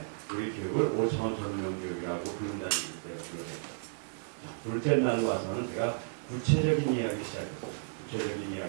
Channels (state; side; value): silent; left; digital silence